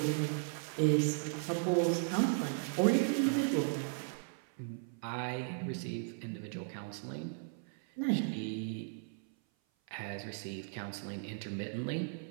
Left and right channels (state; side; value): silent; left; 54 dB below the other